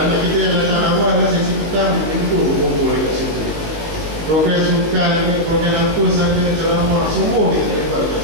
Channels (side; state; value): left; late; 19 ms